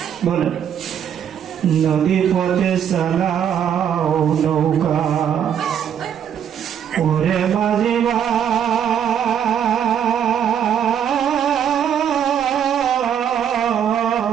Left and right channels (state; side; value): quieter; left; 8.9 dB